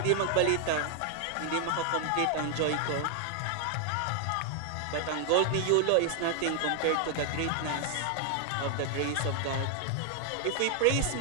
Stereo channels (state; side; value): different; both; correlation 0.00